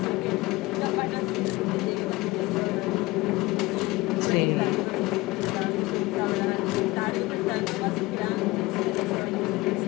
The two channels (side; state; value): right; quieter; 20.7 dB